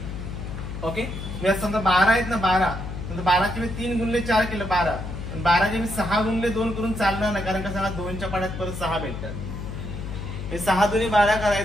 ओके, मी समजा 12 आहेत ना. 12ची मी 3 गुणिले 4 केलं 12. 12चे मी 6 गुणिले 2 करून चालणार नाही. कारण का सांगा 2च्या पाड्यात परत 6 भेटतात. हे 6 दुणे 12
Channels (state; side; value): noise; left; hum, 7 dB below the sound